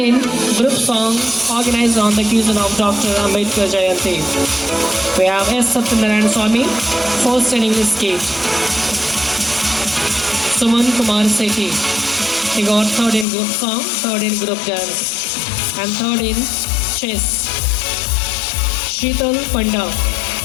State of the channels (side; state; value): right; drops out; at 13.2 s